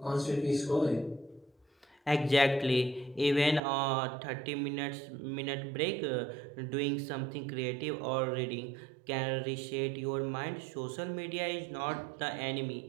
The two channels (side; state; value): left; drops out; at 3.6 s